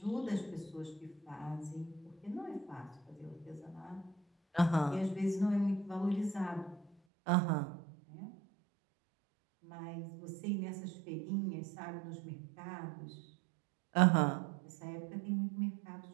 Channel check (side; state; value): left; drops out; at 6.9 s